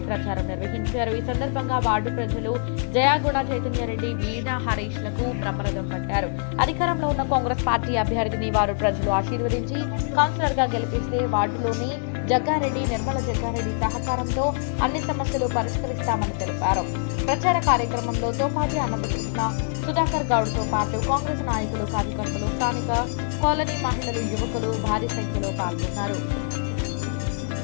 ప్రచారం నిర్వహించారు. ఈ సందర్భంగా వార్డు ప్రజలు జయాగుణ చైతన్యారెడ్డి వీణా హరీష్లకు బ్రహ్మరథం పట్టారు. అధికారంలో ఉన్న కాంగ్రెస్ పార్టీ అభ్యర్థిని వారు ప్రజలు ఆశీర్వదించి కౌన్సిలర్ గా గెలిపిస్తే వార్డులోని జగ్గారెడ్డి, నిర్మల జగ్గారెడ్డి సహకారంతో అన్ని సమస్యలు పరిష్కరిస్తామని తెలిపారు. ప్రచార కార్యక్రమంలో తోపాజీ అనంతకృష్ణ, సుధాకర్ గౌడ్తో పాటు కాంగ్రెస్ నాయకులు, కార్యకర్తలు, స్థానిక కాలనీ మహిళలు, యువకులు భారీ సంఖ్యలో పాల్గొన్నారు.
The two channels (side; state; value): right; silent; digital silence